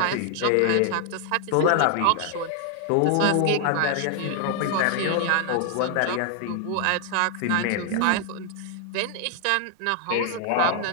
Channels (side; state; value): both; different; correlation 0.00